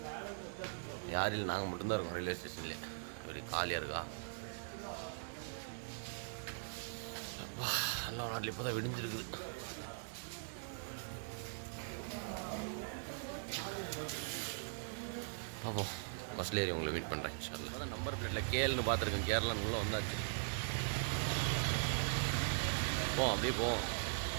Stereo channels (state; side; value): silent; left; digital silence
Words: யாரும் நாங்கள் மட்டும்தான் இருக்கோம் ரயில்வே ஸ்டேஷன்லேயே. இப்படி காலியாக இருக்கா? எல்லா நாட்டில் இப்போ தான் விடிஞ்சிருக்குது. பார்ப்போம். பஸ்ஸில் ஏறி உங்களை மீட் பண்ணுறேன் இன்ஷால்லா. அதான் நம்பர் பிளேட்டில் கேள்னு பார்த்துருக்கேன். கேரளான்னு உள்ளே வந்தாச்சு. அப்படியே போவோம்.